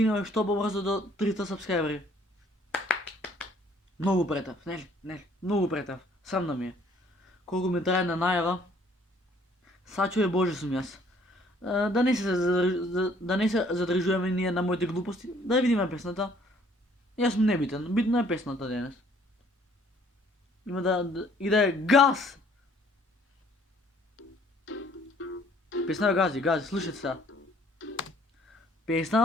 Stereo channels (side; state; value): both; normal; correlation 0.60